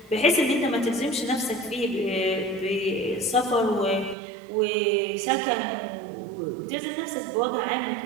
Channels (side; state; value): left; drops out; at 4.2 s